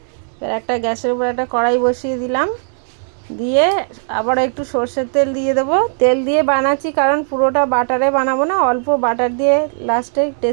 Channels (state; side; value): silent; left; digital silence